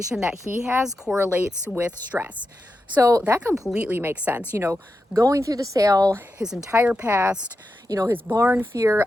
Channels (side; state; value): both; normal; correlation 0.89